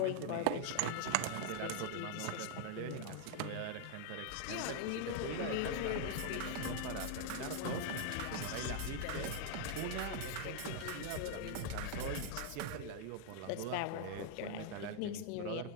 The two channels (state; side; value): different; both; correlation 0.00